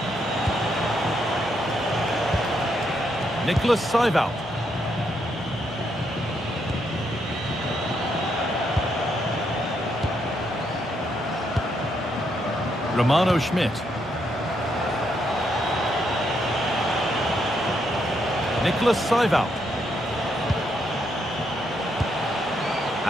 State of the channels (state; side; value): normal; both; correlation 0.77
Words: Nicholas Seiwald. Romano Schmidt. Nicholas Seiwald.